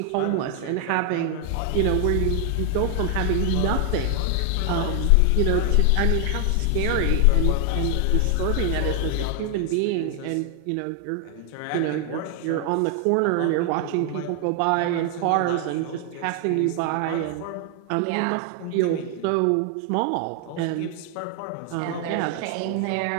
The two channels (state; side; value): different; both; correlation 0.00